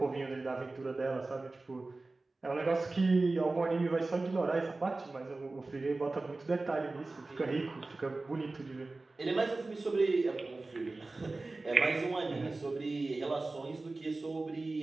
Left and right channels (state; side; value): quieter; left; 3.3 dB